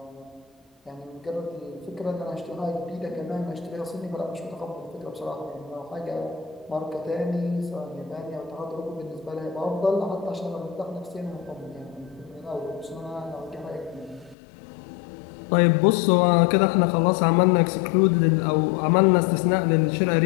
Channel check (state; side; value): drops out; right; at 14.4 s